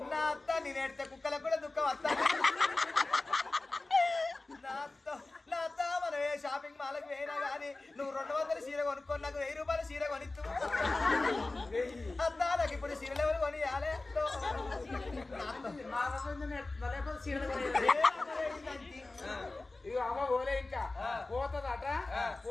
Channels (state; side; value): quieter; right; 3.2 dB